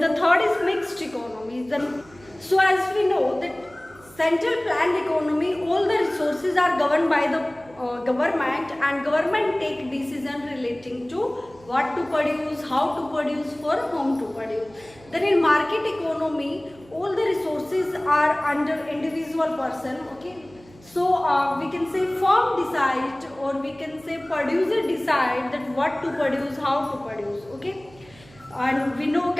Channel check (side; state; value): right; noise; hum, 25 dB below the sound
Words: third is mixed economy. Then so as we know that central planned economy, all the resources are governed by the government and government take decision relating to what to produce, how to produce, for whom to produce. Then in market economy, all the resources are under individual person. Okay, so we can say firm decide or we can say producer decide that what to produce, how to produce. Okay. And we know